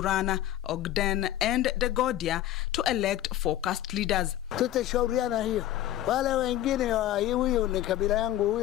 Ogden and Dagodia, to elect focused leaders. Tutashauriana hiyo. Wale wengine huyu ni kabila yangu,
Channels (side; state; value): right; quieter; 13.4 dB